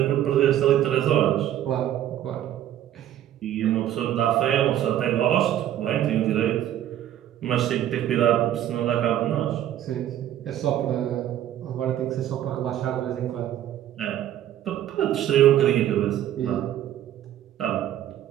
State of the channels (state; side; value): quieter; left; 11.7 dB